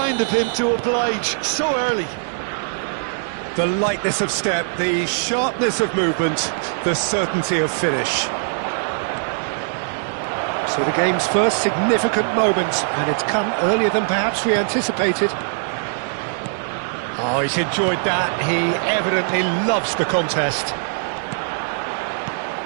of him to oblige so early. The lightness of step, the sharpness of movement, the certainty of finish. So the game's first significant moment, and it's come earlier than perhaps we anticipated. Oh, he's enjoyed that. He evidently loves the contest.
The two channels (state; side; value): silent; left; digital silence